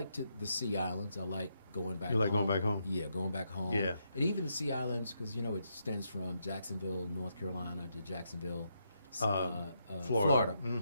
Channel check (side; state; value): both; inverted; correlation -0.80